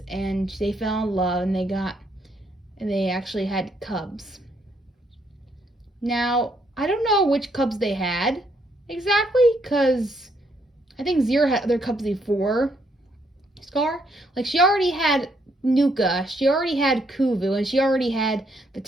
and they fell in love, and they actually had cubs. Now, I don't know which cubs they had exactly, because I think Zira had other cubs before Scar. Like, she already had Nuka, she already had Kuvu, and she already had the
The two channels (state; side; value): normal; both; correlation 0.72